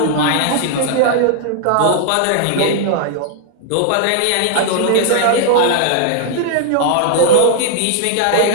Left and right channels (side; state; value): both; different; correlation 0.00